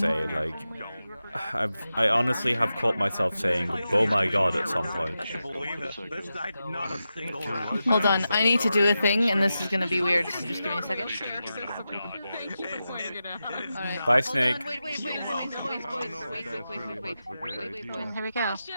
Like I honestly have caught myself saying "oh my god" at some point. Not a single round. Hold on, I need to do a thing, and this is gonna be weird. So just give me a second. Alright. Bye, Hold Snake. on, wait, boys. Here we go. That's why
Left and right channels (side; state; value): both; inverted; correlation -0.91